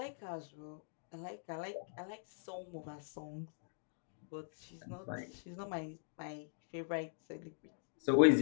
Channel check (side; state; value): right; silent; digital silence